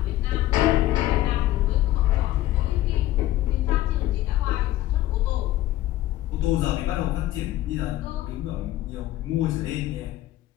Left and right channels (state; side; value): quieter; right; 14.8 dB